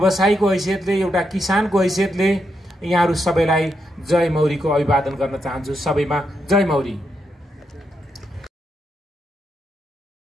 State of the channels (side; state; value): both; normal; correlation 0.82